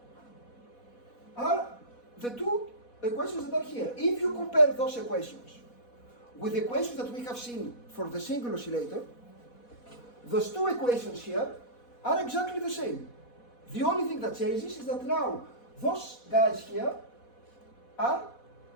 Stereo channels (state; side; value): late; right; 4.1 ms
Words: are the 2 equations that are here. If you compare those equations with the equations that we have seen for the single oscillator, those 2 equations here are exactly the same. The only thing that changes is that now those guys here are